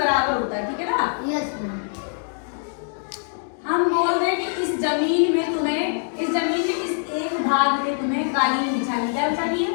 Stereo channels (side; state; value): right; silent; digital silence